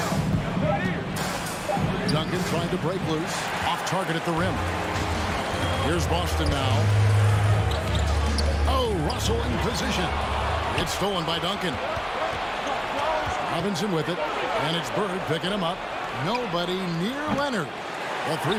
Duncan trying to break loose. Off target at the rim. Here's Boston now. Oh, Russell in position. It's stolen by Duncan. Robinson with it. And it's Bird picking him up. Nobody near Leonard. A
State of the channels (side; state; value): both; identical; correlation 1.00